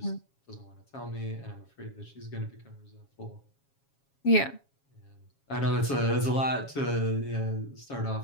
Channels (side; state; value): right; late; 7.3 ms